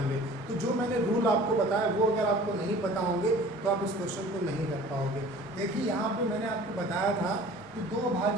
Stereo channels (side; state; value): both; normal; correlation 0.46